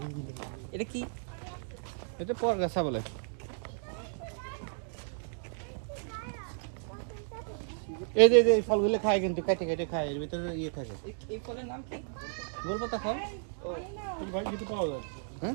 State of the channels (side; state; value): left; silent; digital silence